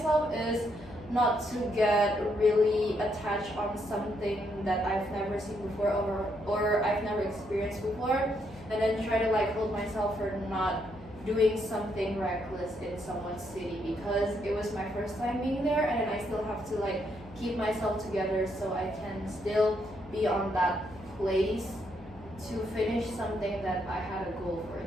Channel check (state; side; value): noise; left; hum, 19 dB below the sound